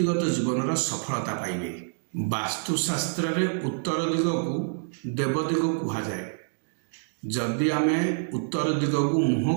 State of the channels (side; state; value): left; silent; digital silence